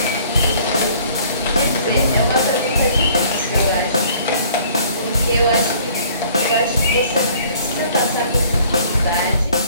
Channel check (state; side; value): inverted; both; correlation -0.56